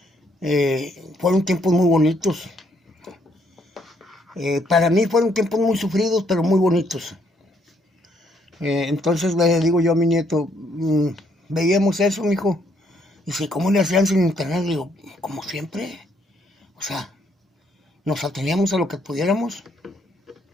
Fueron tiempos muy bonitos. Para mí fueron tiempos muy sufridos, pero muy bonitos. Entonces le digo yo a mi nieto, veíamos eso, mijo. Dice, ¿cómo le hacían sin internet? Le digo, como siempre. O sea, nos ateníamos a lo que pudiéramos.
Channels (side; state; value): both; normal; correlation 0.70